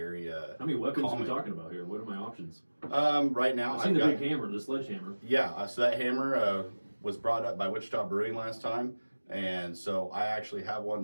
How many weapons calming. are we talking about here? What are my options? Right now, I've seen the big hammer, the sledgehammer. Yeah, so that hammer was brought up by Wichita Brewing last time. And so I actually have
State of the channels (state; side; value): inverted; both; correlation -1.00